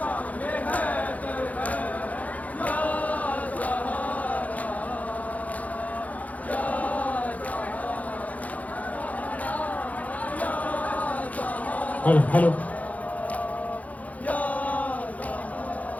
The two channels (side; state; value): right; late; 0.073 ms